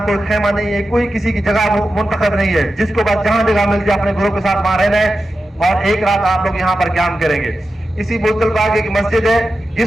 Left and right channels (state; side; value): normal; both; correlation 0.92